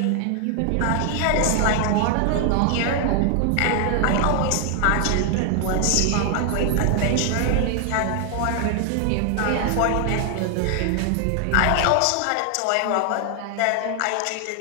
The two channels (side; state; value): both; different; correlation 0.00